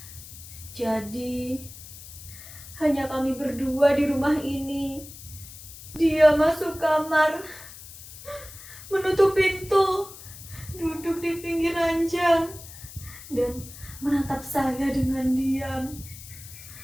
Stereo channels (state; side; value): noise; left; hiss, 16 dB below the sound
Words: Jadi hanya kami berdua di rumah ini. Dia masuk kamar, menutup pintu, duduk di pinggir ranjang, dan menatap saya dengan diam.